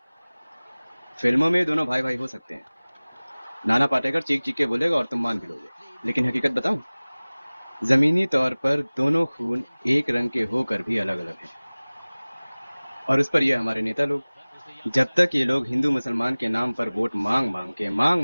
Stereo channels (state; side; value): inverted; both; correlation -1.00